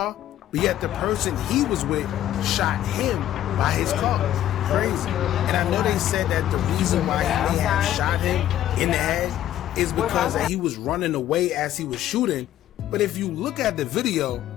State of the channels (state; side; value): quieter; right; 12.3 dB